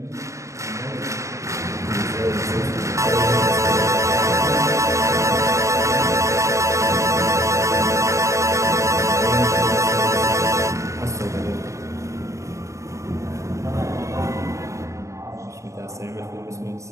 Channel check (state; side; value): late; left; 0.15 ms